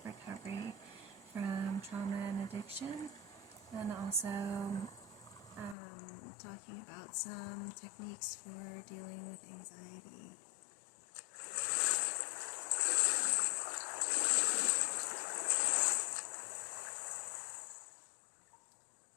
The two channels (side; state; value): right; drops out; at 5.8 s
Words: recovery from trauma and addiction, and also talking about some techniques for dealing with anxiety.